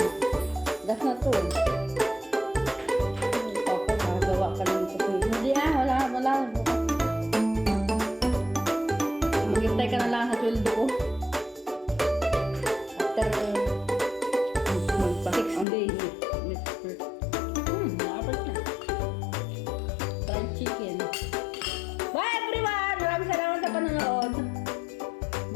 Das na to. Papa, nagawa ka ng kape. Hindi wala. Bukas. Maghintay ka na lang sa sweldo ko. After 6 days.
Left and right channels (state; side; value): drops out; right; at 15.7 s